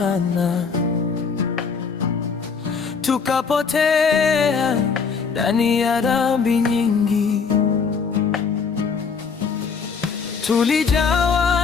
tukapotea ndani ya dhambi nyingi.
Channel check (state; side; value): quieter; right; 5.6 dB